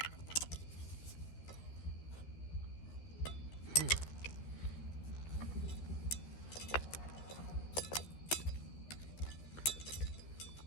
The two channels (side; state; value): right; late; 13 ms